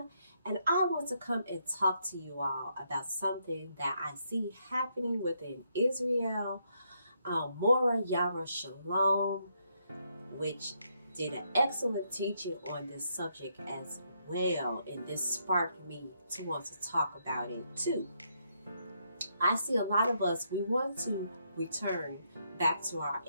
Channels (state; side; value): inverted; both; correlation -0.76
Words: and I want to come and talk to you all about something that I see happening within Israel. Mora Yara Shalom, which did an excellent teaching on this subject as well, and this sparked me to want to talk about it too. I see a lot of us, we want to return back to our